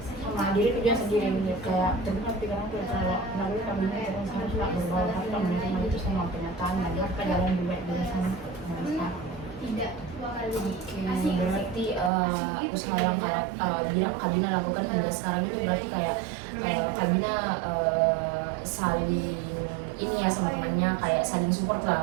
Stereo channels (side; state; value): left; drops out; at 12.1 s